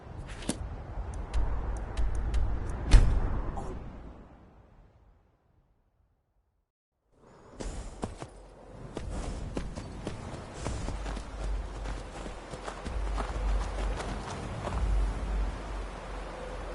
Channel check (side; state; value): both; identical; correlation 1.00